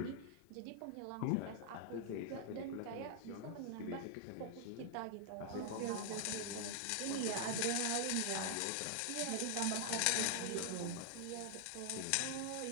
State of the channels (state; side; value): different; both; correlation 0.00